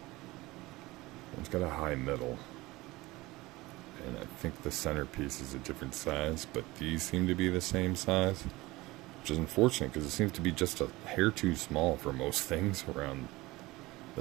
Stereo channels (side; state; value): left; quieter; 20.4 dB